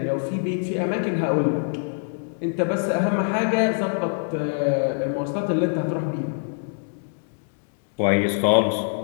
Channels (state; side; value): silent; right; digital silence